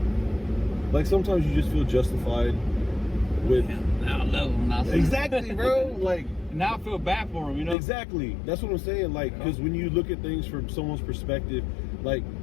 Like, sometimes you just feel justified with... Yeah, now I love him. Now Exactly, bro. Like... Now I feel bad for him, you know? Exactly. That's what I'm saying. Like, because when you look at things from someone's perspective, like,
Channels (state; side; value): drops out; right; at 7.8 s